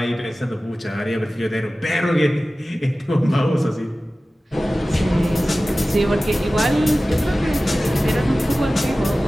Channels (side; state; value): both; normal; correlation 0.96